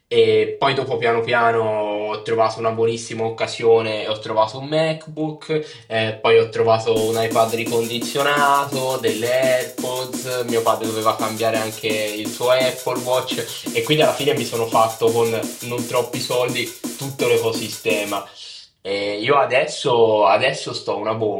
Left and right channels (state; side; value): identical; both; correlation 1.00